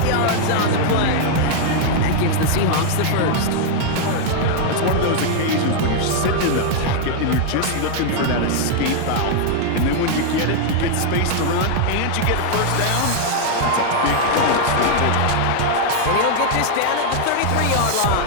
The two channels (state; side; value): different; both; correlation 0.00